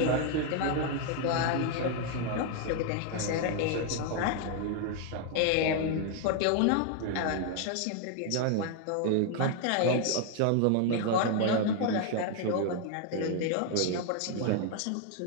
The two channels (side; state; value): both; different; correlation 0.00